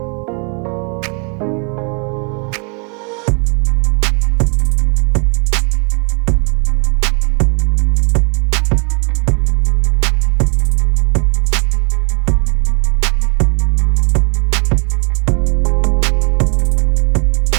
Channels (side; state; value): left; quieter; 36.7 dB